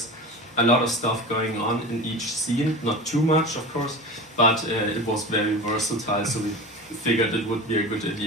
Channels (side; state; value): both; normal; correlation 0.31